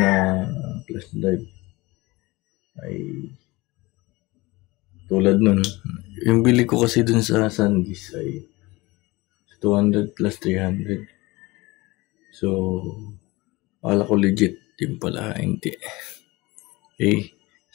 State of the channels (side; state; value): right; quieter; 22.0 dB